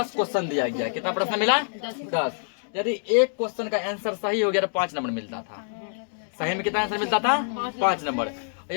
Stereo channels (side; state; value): right; silent; digital silence